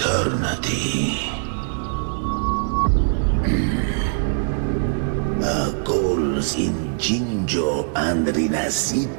Our goals in Jinjo and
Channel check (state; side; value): silent; left; digital silence